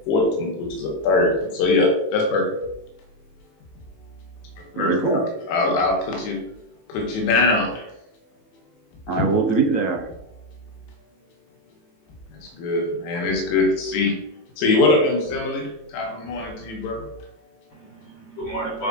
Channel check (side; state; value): right; late; 18 ms